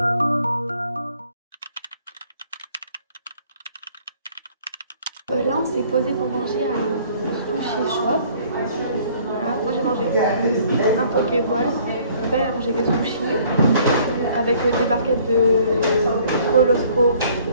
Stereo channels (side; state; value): both; inverted; correlation -0.58